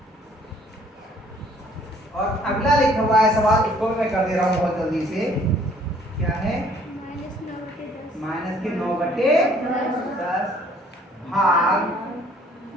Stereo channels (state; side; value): normal; both; correlation 0.59